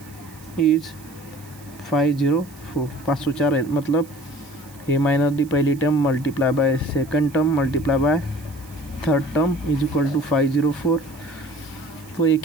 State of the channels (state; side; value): noise; right; hiss, 23 dB below the sound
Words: is 504, 504 है, मतलब a माइनस डी पहली term multiply by second term multiply by third term is equal to 504। तो एक